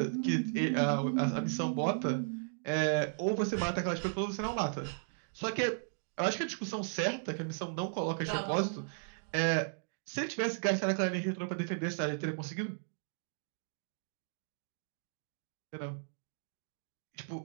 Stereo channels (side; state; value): left; silent; digital silence